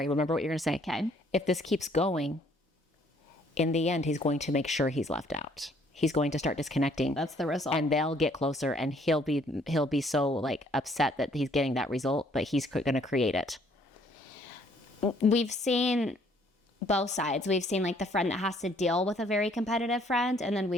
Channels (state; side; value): normal; both; correlation 0.63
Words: remember what you're going to say. Okay. If this keeps going, in the end, he's going to make sure he's left out. He's going to start disconnecting. That's the result. And they'll get closer, and he'll be so, like, upset that he's getting that result, but he's going to create it. We've seen both sides. We've seen, like, the friend that has to deal with a very competitive friend, and then